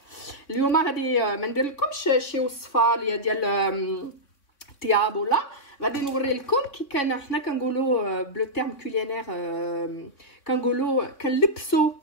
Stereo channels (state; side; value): late; right; 3.3 ms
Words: اليوم غادي ما نديرلكمش شي وصفه اللي ديال طياب ولا غادي نوري لكم كي كان حنا كنقولوا بلو تيرم كولينير كنقولوا كنلبسوا